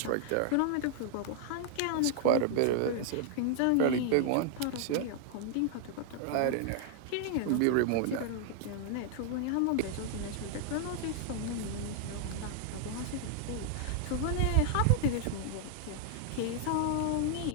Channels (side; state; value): both; different; correlation -0.01